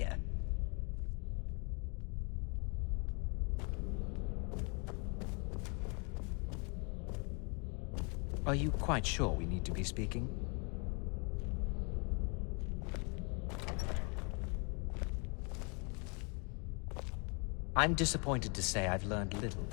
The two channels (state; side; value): quieter; right; 34.4 dB